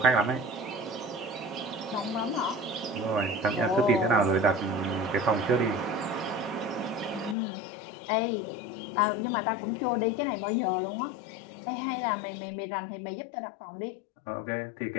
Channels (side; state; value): right; drops out; at 7.4 s